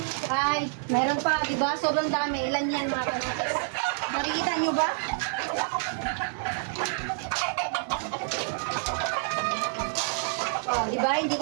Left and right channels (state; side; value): silent; left; 59 dB below the other